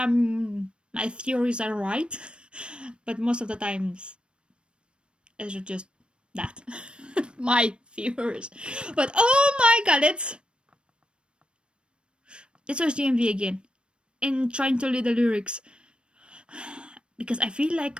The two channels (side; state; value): left; late; 0.056 ms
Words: theories are right, but most of the times it's just that my theories. But oh my god, let's watch the MV again and trying to read the lyrics because I feel